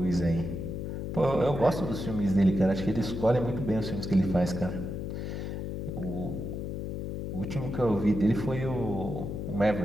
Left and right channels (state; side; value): noise; left; hum, 4 dB below the sound